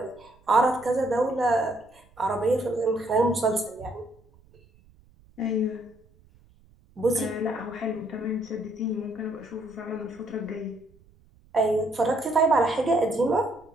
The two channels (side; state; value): right; noise; rumble, 29 dB below the sound